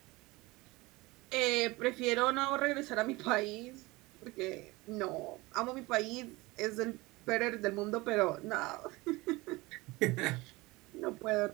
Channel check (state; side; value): quieter; left; 22.1 dB